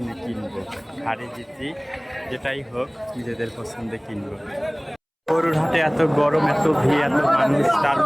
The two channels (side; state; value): both; identical; correlation 1.00